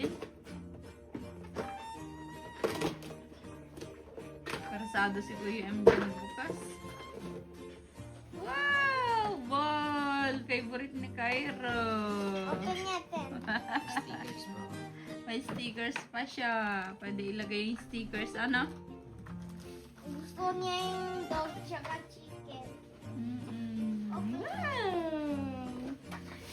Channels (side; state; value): both; identical; correlation 1.00